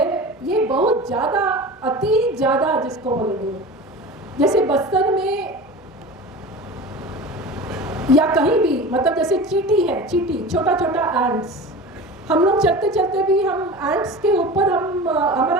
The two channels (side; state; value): both; normal; correlation 0.33